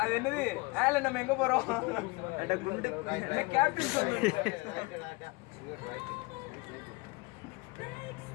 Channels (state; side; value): quieter; right; 25.7 dB